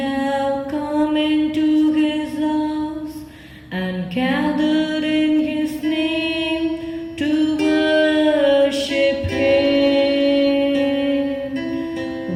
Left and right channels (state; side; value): identical; both; correlation 1.00